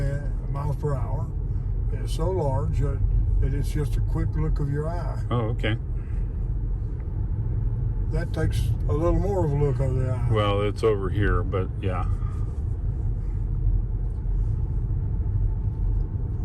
miles per hour. It's so large that it's just a quick look of your eye. Oh, okay. That takes a little more of a look of the eye. Well, it's over here, but yeah.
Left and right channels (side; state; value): both; identical; correlation 1.00